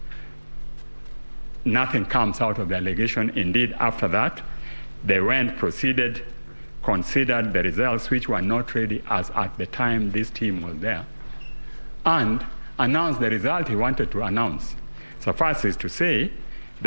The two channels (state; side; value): inverted; both; correlation -1.00